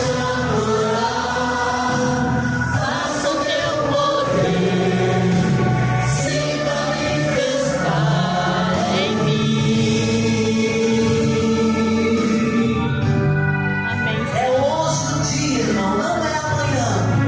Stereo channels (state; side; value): identical; both; correlation 1.00